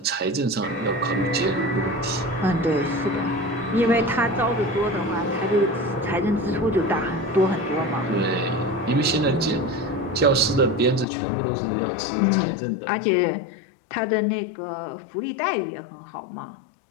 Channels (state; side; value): drops out; right; at 11.1 s